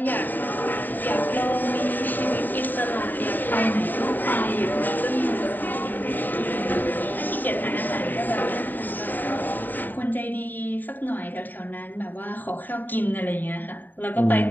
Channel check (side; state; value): right; late; 0.090 ms